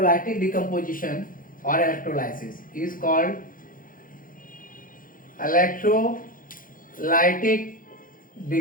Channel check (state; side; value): late; right; 0.40 ms